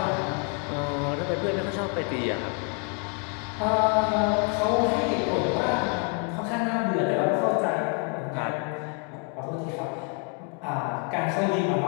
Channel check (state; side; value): quieter; right; 35.7 dB